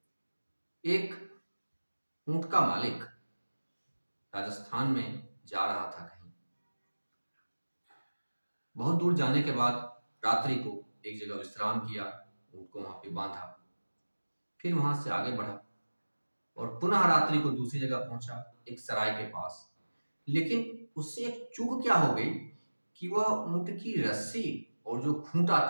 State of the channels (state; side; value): inverted; both; correlation -1.00